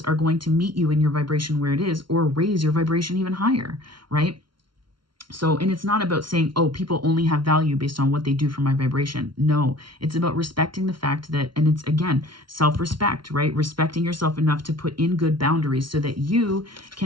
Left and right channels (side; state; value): left; late; 0.73 ms